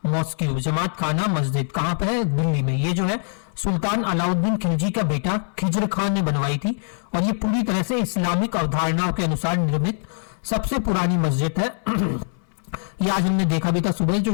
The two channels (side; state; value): right; silent; 64 dB below the other